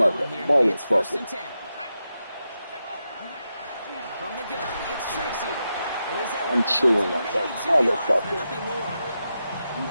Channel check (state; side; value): inverted; both; correlation -0.88